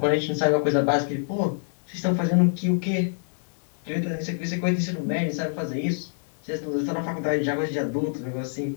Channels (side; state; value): right; silent; 61 dB below the other